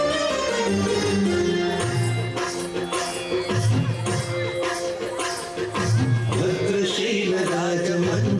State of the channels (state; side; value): identical; both; correlation 1.00